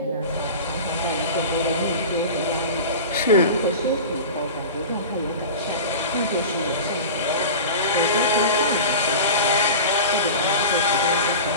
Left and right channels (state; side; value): inverted; both; correlation -0.32